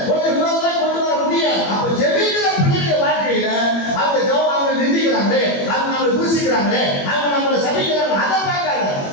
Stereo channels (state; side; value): late; right; 21 ms